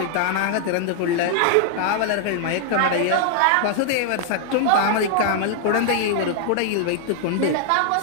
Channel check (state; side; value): different; both; correlation -0.01